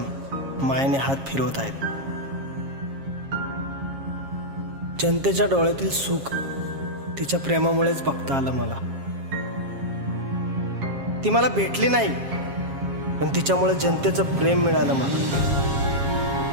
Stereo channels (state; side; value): late; left; 7.4 ms